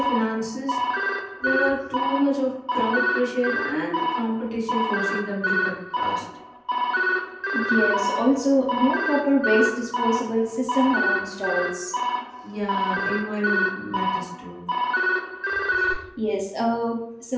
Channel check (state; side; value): identical; both; correlation 1.00